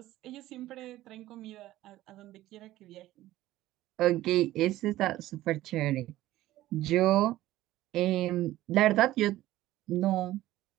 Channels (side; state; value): left; quieter; 15.5 dB